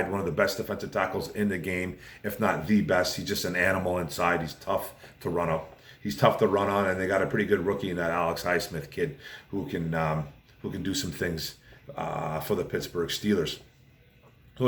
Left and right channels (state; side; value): identical; both; correlation 1.00